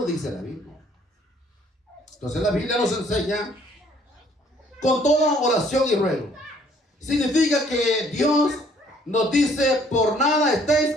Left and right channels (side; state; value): both; normal; correlation 0.61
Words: dice la Biblia. Entonces la Biblia nos enseña con toda oración y ruego. Significa que Dios nos dice, por nada estéis